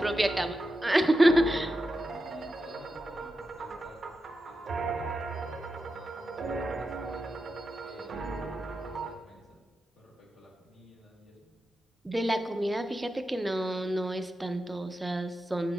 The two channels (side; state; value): both; normal; correlation 0.90